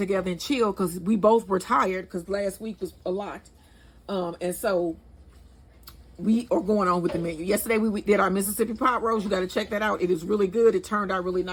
and chill because we both were tired because last week was a lot. And so we are going on with the menu. Yesterday we did our Mississippi pot roast. You got to check that out. It is really good. It turned out really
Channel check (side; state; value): both; identical; correlation 1.00